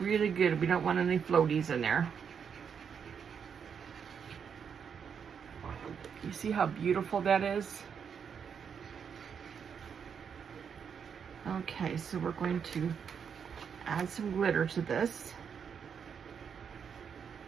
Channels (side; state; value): left; quieter; 7.1 dB